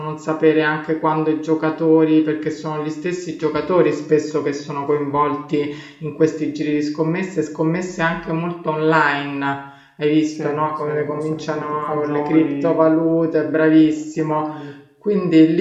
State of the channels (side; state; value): both; identical; correlation 1.00